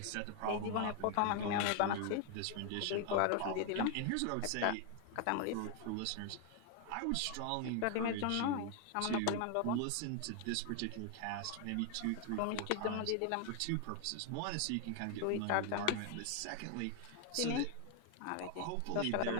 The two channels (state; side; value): different; both; correlation 0.00